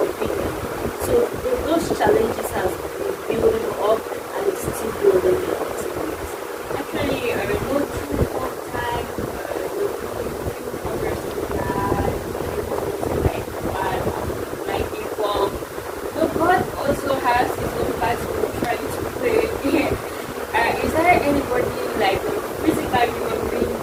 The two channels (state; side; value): identical; both; correlation 1.00